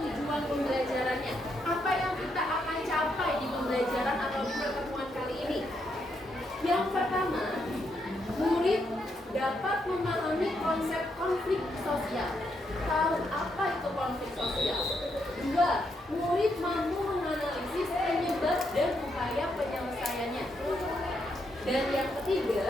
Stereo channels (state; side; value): normal; both; correlation 0.79